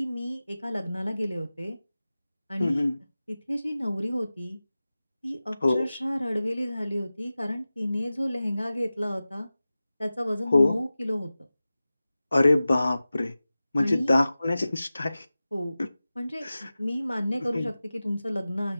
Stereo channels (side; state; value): both; inverted; correlation -0.96